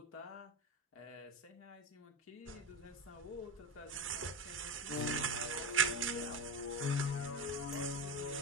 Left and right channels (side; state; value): both; normal; correlation 0.17